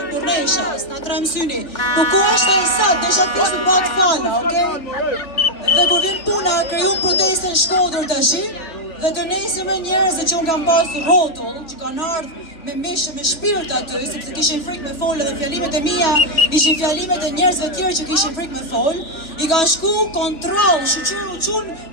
për nesha, s'na trem syni, po ko është e sat, desha të pishë në batë fala, okej? Dhe kur vjen puna, kriju protestën Shkodër të shi, dhe të nesërme njerëzve që unë kam pasur rotull, që kanë ardhë me mishë, me shpirt aty, sepse kishin frikë me folë dhe fjalimet e mia ishin fjalimet e njerëzve tjerë që kishin frikë me folë, i ka shku kontrol, shqyru qunë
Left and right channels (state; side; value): late; right; 3.4 ms